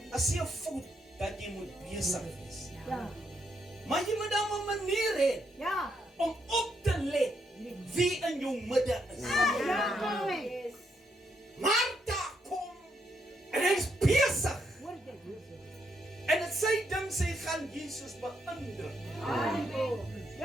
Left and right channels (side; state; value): both; normal; correlation 0.77